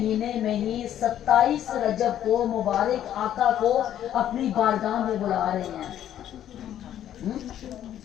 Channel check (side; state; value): right; quieter; 11.1 dB